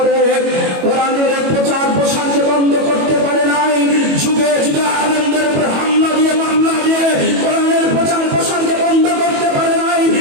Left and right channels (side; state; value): left; late; 21 ms